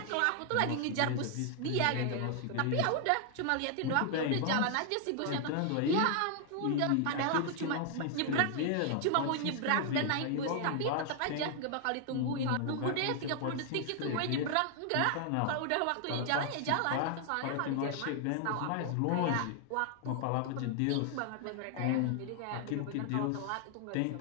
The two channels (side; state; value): both; different; correlation 0.00